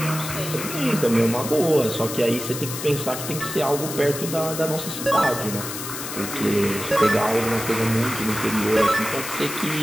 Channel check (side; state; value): left; noise; hiss, 7 dB below the sound